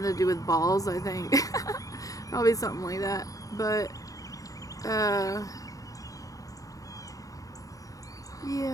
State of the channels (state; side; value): late; right; 0.17 ms